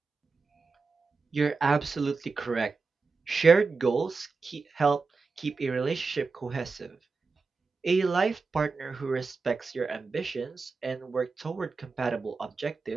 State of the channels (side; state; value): left; quieter; 4.4 dB